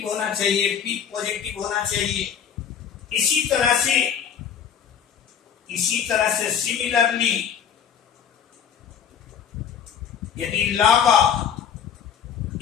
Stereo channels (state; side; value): quieter; right; 8.0 dB